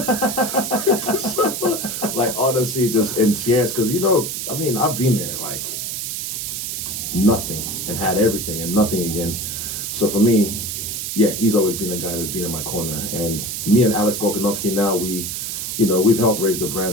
you so much." Like honestly, just in tears, because I've been there, like nothing, and had everything, and nothing again. So for me, yeah, he's always been a guy that's been in my corner. And me and Alex Volkanovski now, we've helped raise the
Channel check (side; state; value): right; noise; hiss, 4 dB below the sound